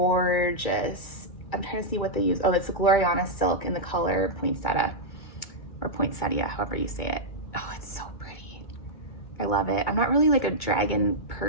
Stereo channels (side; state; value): right; late; 2.2 ms